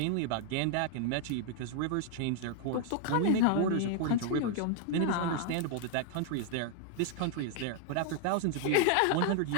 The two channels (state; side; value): different; both; correlation 0.00